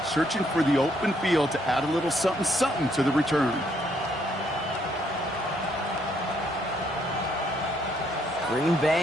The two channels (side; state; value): both; normal; correlation 0.71